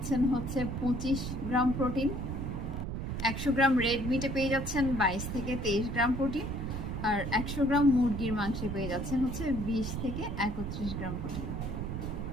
25 গ্রাম প্রোটিন। 100 গ্রাম রেড মিটে পেয়ে যাচ্ছেন 22 থেকে 23 গ্রাম প্রোটিন। আর 100 গ্রাম মুরগির মাংসে পেয়ে যাচ্ছেন 20 থেকে 31 গ্রাম প্রোটিন।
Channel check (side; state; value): right; noise; rumble, 4 dB below the sound